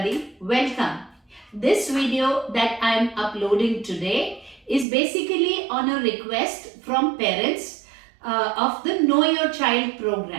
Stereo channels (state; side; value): drops out; left; at 4.9 s